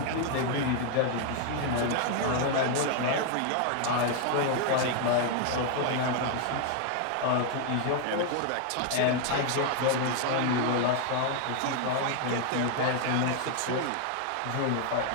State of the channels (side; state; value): both; different; correlation 0.00